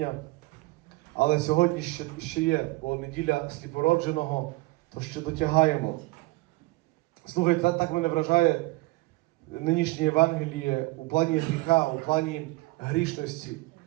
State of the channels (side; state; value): left; quieter; 22.1 dB